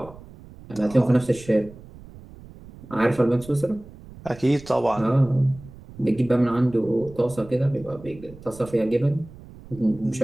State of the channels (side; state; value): right; noise; rumble, 19 dB below the sound